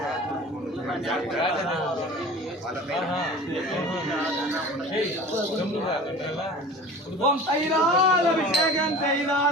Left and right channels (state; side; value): normal; both; correlation 0.39